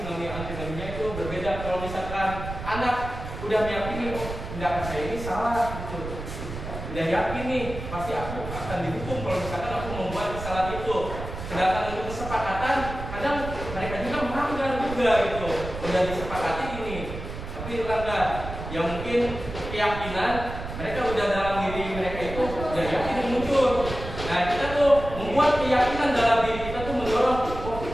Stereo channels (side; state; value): right; noise; rumble, 8 dB below the sound